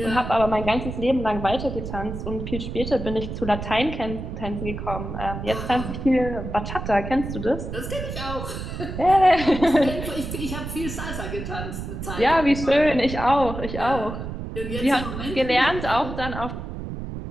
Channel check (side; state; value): right; noise; rumble, 7 dB below the sound